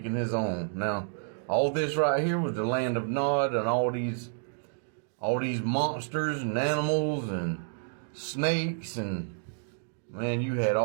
Now, all this right here was the land of Nod, and all these monsters and animals and snakes, and man, you had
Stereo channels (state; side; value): silent; left; digital silence